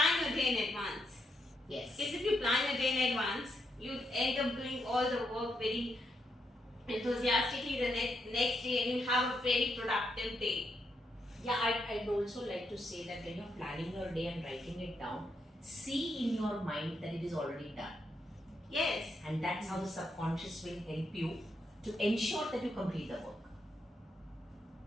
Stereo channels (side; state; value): both; normal; correlation 0.81